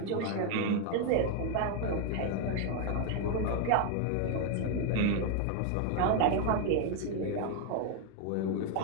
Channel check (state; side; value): different; both; correlation 0.01